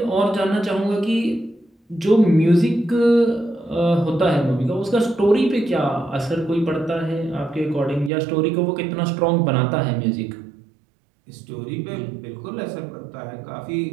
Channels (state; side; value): drops out; left; at 8.1 s